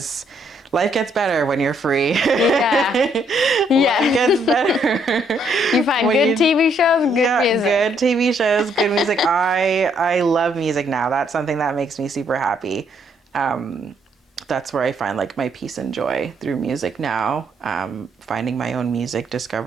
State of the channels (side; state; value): both; normal; correlation 0.70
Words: life gets better when you're free. Life gets better. You find good TV shows, good music. Good TV shows, good music. I love music now. That's something that makes me super happy. That's where I find like my peace and joy, through music now. Finding my own music,